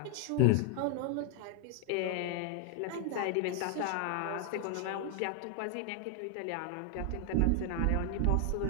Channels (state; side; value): different; both; correlation 0.00